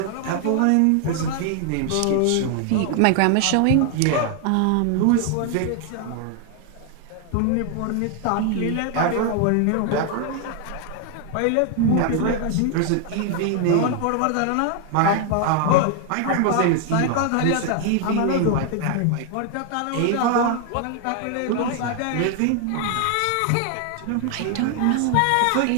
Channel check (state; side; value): different; both; correlation 0.00